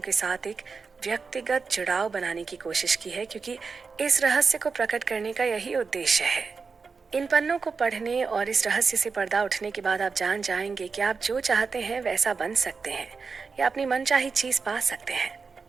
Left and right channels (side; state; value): left; quieter; 4.9 dB